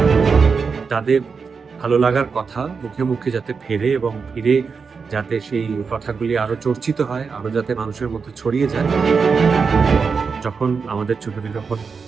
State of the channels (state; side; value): quieter; left; 5.3 dB